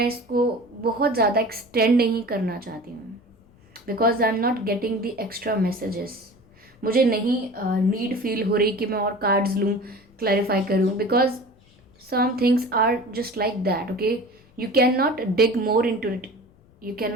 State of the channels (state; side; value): noise; left; rumble, 29 dB below the sound